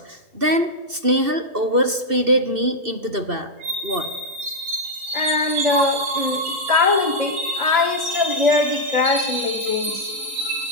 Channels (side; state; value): left; late; 2.7 ms